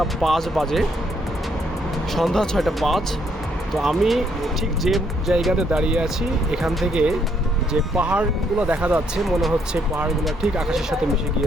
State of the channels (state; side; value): normal; both; correlation 0.71